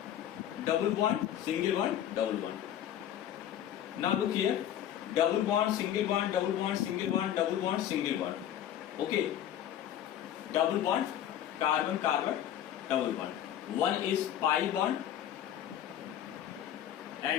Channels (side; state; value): right; quieter; 11.0 dB